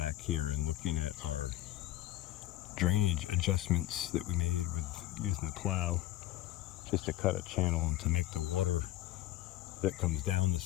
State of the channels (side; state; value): right; quieter; 14.9 dB